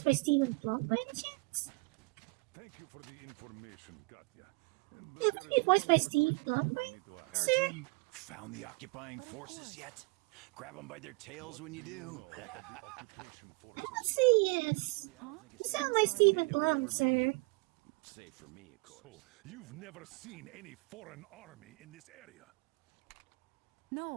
by Stephen Plum by any chance? Thank you for the information, Katya. You happen to be voiced by Steve Plum, right? Hi, Sir? Artyom. Found the occupying forces yet? Grab them by their tails when you do. I would say yes. You sound like Stephen Plum, sir. Save for me, of course. So, you've never seen any foreign army in this area?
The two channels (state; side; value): quieter; left; 29.4 dB